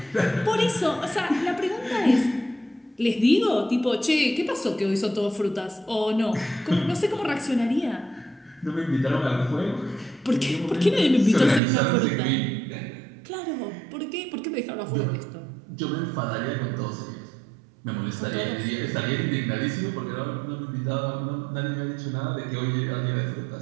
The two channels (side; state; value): left; drops out; at 11.6 s